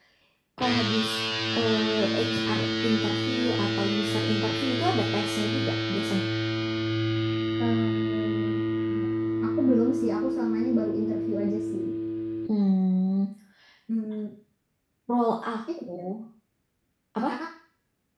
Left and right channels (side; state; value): both; identical; correlation 1.00